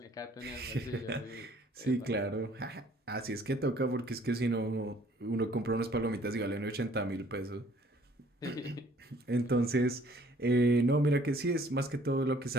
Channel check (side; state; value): both; normal; correlation 0.58